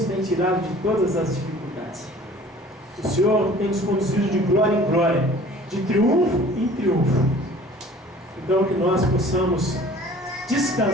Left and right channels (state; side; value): normal; both; correlation 0.49